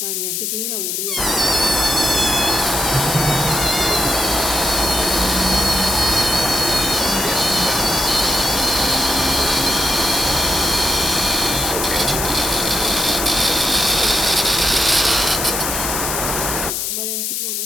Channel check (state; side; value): noise; left; hiss, 1 dB below the sound